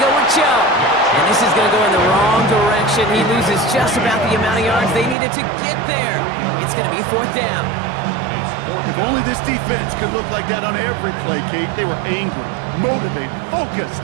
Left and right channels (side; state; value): left; drops out; at 5.2 s